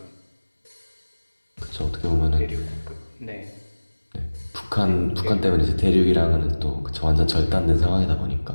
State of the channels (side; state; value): both; inverted; correlation -1.00